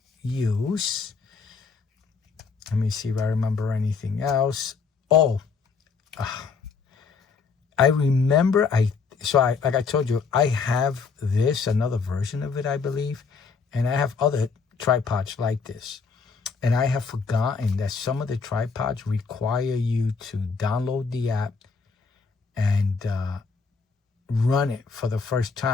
use. Let me see if I remember anything else. Oh, I remember. Like I told you, I have another version of it, I believe, and I have other tripods like this. And I have forgotten that some of the tripods require you to download the app and run it for the first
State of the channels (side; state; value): right; quieter; 5.1 dB